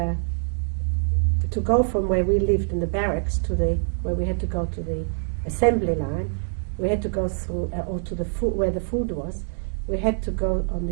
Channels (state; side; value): silent; left; 60 dB below the other